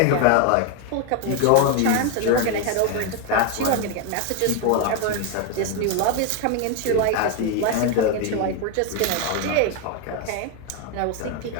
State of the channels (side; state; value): both; different; correlation 0.01